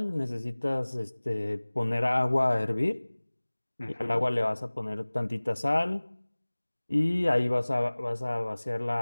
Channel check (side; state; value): both; inverted; correlation -1.00